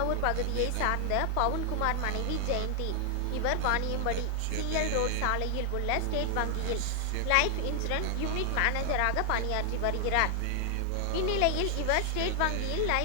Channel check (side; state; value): both; different; correlation 0.00